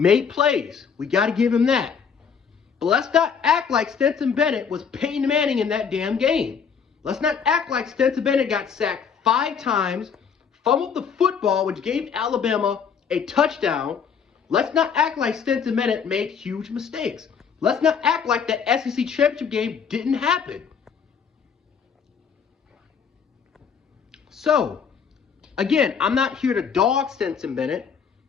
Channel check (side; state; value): right; quieter; 6.7 dB